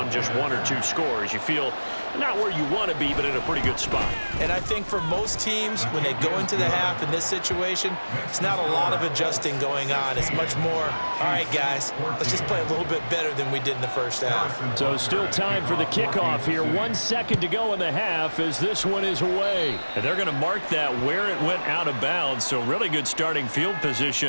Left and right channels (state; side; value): inverted; both; correlation -1.00